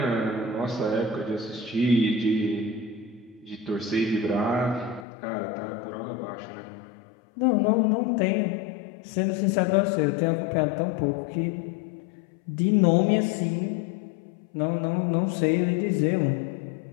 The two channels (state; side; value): drops out; right; at 5.1 s